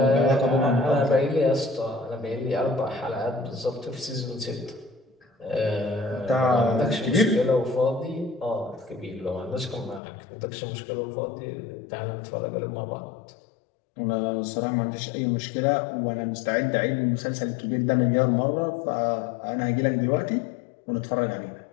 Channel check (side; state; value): right; drops out; at 10.0 s